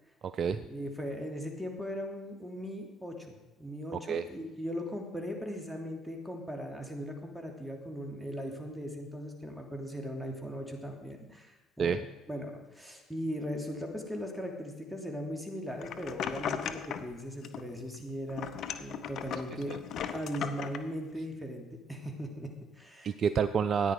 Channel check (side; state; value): both; normal; correlation 0.71